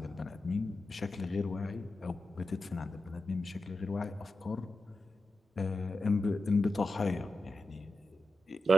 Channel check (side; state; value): both; normal; correlation 0.90